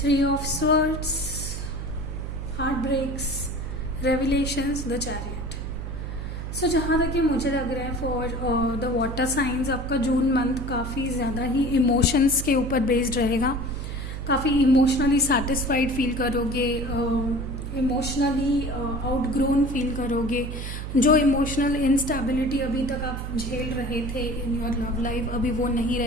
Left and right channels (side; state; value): right; noise; hum, 6 dB below the sound